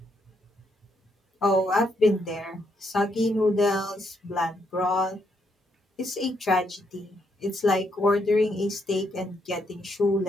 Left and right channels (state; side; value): normal; both; correlation 0.76